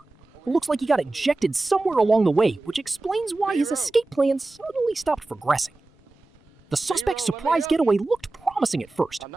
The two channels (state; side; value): quieter; left; 3.1 dB